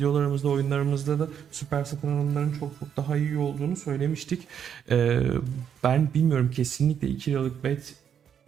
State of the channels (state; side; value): quieter; left; 8.3 dB